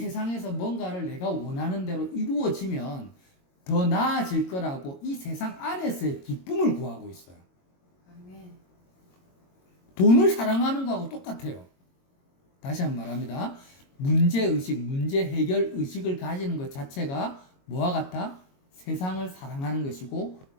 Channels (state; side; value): late; right; 22 ms